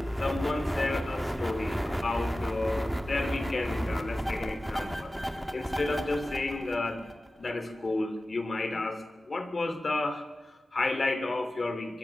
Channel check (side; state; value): both; normal; correlation 0.96